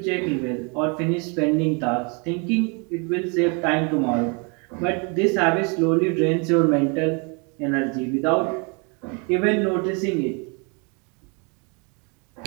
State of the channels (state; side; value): quieter; left; 33.9 dB